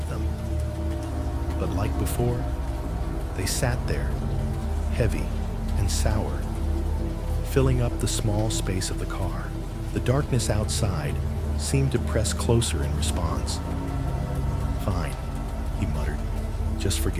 them. But like before, they sat there, heavy and sour, filling up the small space of the car. The darkness outside seemed to press closer in response. Fine, he muttered. Just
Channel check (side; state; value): both; identical; correlation 1.00